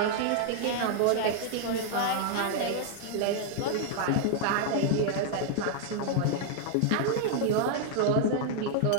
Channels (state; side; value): different; both; correlation -0.01